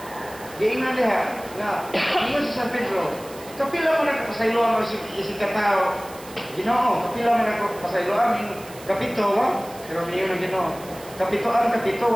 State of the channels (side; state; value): right; noise; hiss, 19 dB below the sound